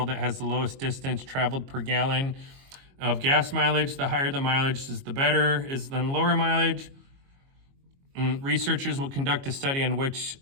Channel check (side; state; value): left; late; 22 ms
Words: that has the lowest distance traveled per gallon of gas mileage. The higher the mileage is the better, than lower mileage. Researchers will conduct a study in which